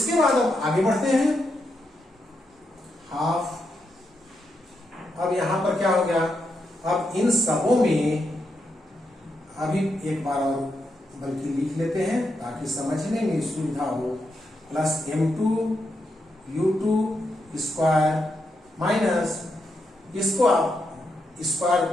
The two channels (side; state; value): both; normal; correlation 0.83